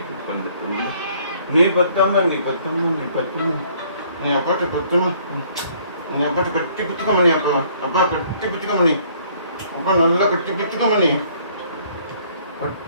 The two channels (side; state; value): both; inverted; correlation -0.61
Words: நீ பத்தம்மா நீ பத்தம்மா நீ பத்தம்மா நீ அப்பாட்ட பத்தம்மா நீ அப்பாட்ட கட்டி பிடிச்சிக்கம்மா நீ அப்பா அப்பா கட்டி பிடிச்சிக்கம்மா நீ அப்பா நல்லா கட்டி பிடிச்சிக்கம்மா நீ